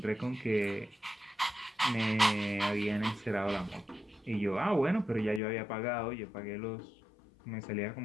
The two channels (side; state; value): right; drops out; at 5.4 s